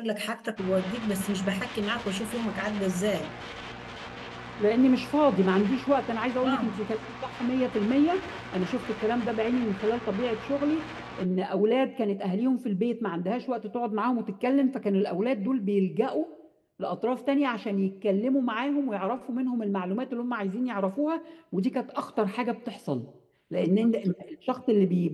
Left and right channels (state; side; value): identical; both; correlation 1.00